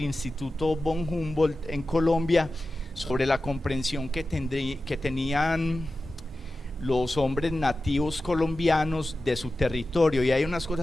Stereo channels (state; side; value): normal; both; correlation 0.94